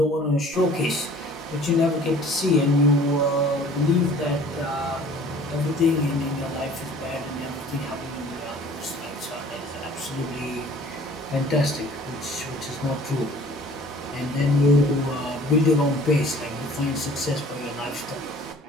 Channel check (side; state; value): both; normal; correlation 0.50